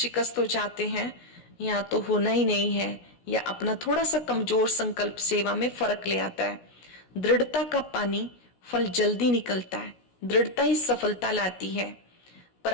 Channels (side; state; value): right; late; 16 ms